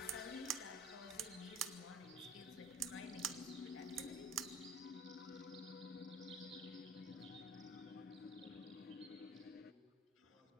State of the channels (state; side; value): normal; both; correlation 0.41